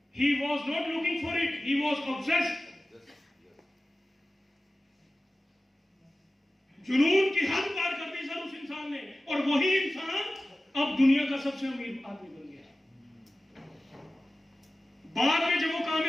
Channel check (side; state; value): both; normal; correlation 0.95